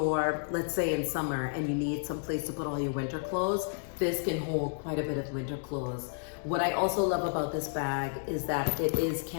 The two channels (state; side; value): silent; right; digital silence